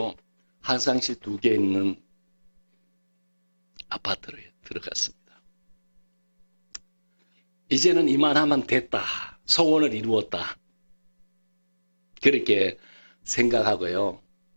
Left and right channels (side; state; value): both; inverted; correlation -1.00